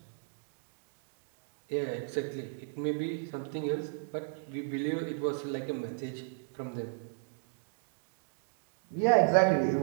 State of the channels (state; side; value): silent; left; digital silence